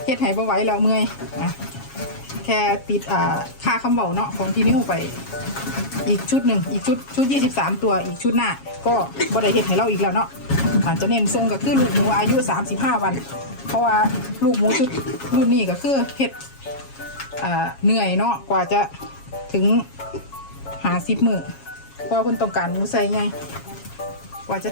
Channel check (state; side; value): late; right; 7.3 ms